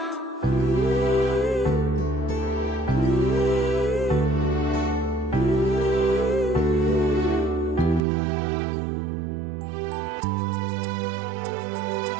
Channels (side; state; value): left; drops out; at 8.0 s